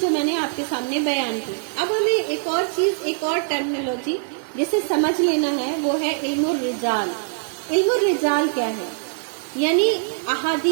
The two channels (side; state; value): left; silent; digital silence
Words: جو میں نے آپ کے سامنے بیان کی. اب ہمیں ایک اور چیز، ایک اور ٹرمینالوجی جسے سمجھ لینا ہے وہ ہے علم الرجال. علم الرجال کیا ہے؟ یعنی